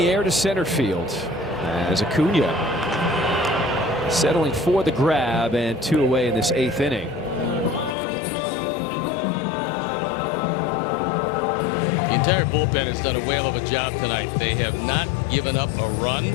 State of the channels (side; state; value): right; drops out; at 8.0 s